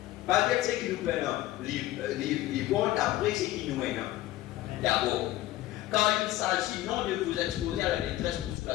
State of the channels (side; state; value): right; quieter; 15.4 dB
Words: Pas dire ce qui nous peine. Les bons d'après ce qui nous mène. D'abord. Quand il s'agit non de vous exposer à la détresse pour